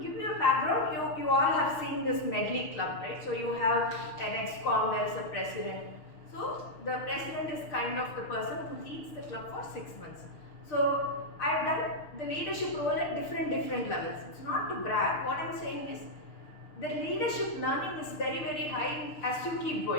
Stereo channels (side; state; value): right; late; 6.5 ms